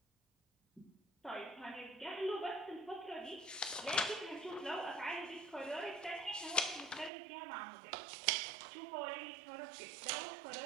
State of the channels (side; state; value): left; drops out; at 7.1 s